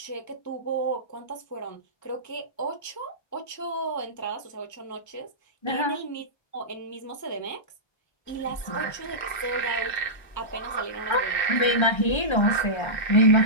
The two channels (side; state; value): right; late; 1.3 ms